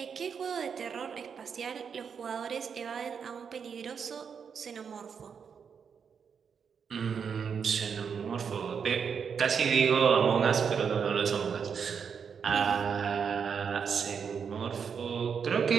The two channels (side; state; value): left; quieter; 6.7 dB